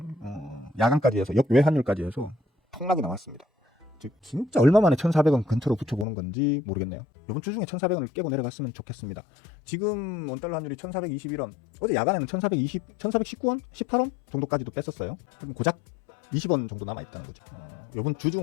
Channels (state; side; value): drops out; right; at 6.1 s